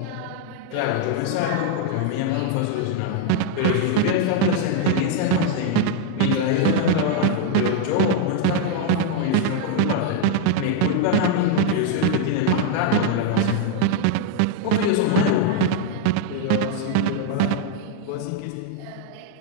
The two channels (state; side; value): different; both; correlation 0.00